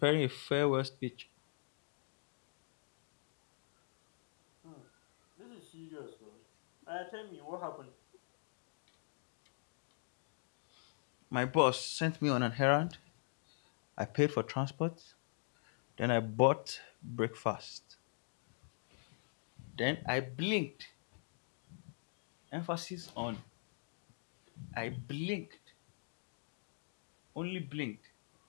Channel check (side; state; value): right; silent; digital silence